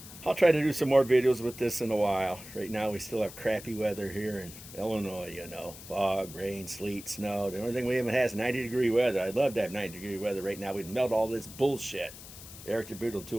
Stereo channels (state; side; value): noise; left; hiss, 15 dB below the sound